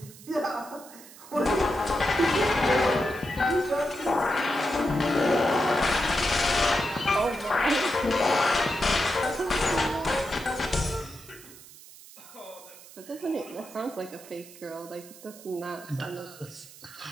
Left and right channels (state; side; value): noise; right; hiss, 19 dB below the sound